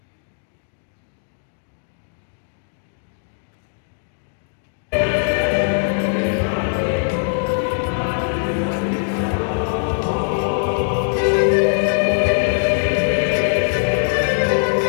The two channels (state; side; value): silent; right; digital silence